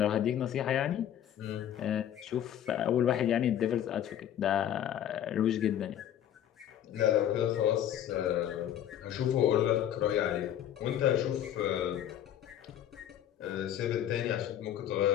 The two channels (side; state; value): right; quieter; 10.6 dB